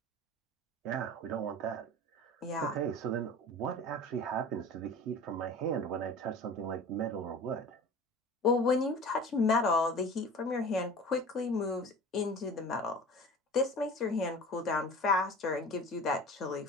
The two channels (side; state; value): both; normal; correlation 0.39